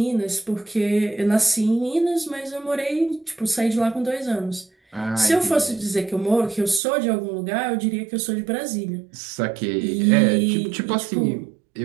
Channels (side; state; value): left; drops out; at 6.8 s